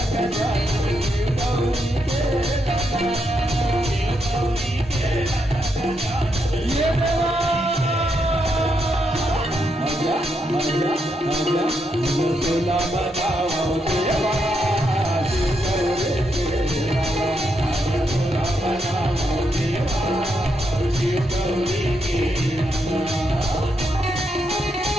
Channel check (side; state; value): both; normal; correlation 0.80